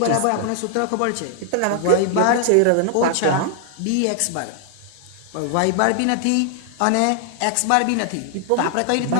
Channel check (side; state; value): both; different; correlation 0.00